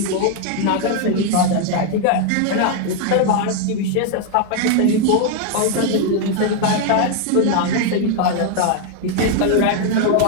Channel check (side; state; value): both; different; correlation 0.00